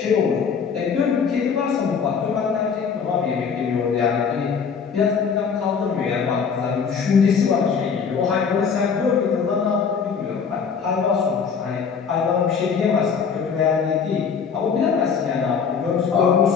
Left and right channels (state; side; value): quieter; right; 6.2 dB